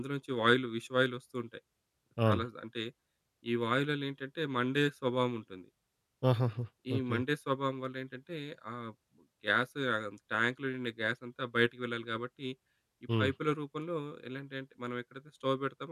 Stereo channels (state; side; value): identical; both; correlation 1.00